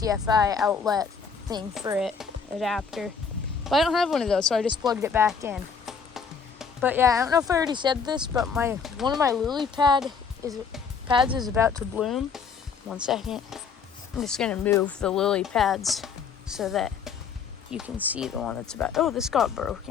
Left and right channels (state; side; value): quieter; right; 5.9 dB